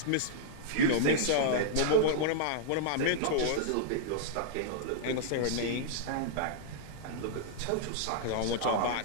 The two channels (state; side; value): different; both; correlation -0.01